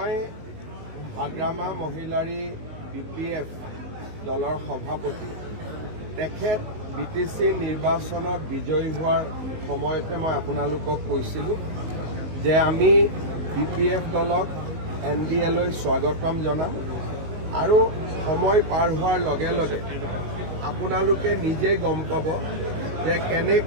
হাগ্ৰামা মহিলাৰী BPF দলৰ সভাপতি তেখেত BTC নিৰ্বাচনত বিজয়ী হোৱাৰ সময়তে মই আপোনালোকক কৈছিলোঁ যে আমি BPF দলক NDA লৈ স্বাগতম জনাম আৰু সময় পাৰ হোৱাৰ লগে লগে আপোনালোকে নিজেই গম পাব যে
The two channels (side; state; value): left; late; 19 ms